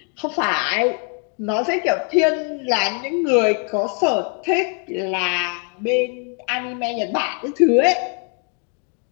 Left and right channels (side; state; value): right; quieter; 37.1 dB